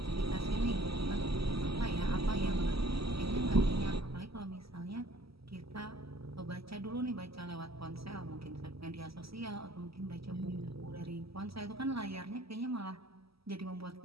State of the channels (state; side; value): late; left; 0.76 ms